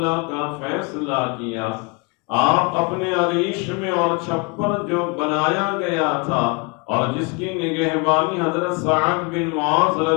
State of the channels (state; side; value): quieter; right; 30.1 dB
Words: کا فیصلہ کیا آپ اپنے عریش میں اور چھپر جو بنایا گیا تھا اور جس کی نگہبانی حضرت سعد بن معاذ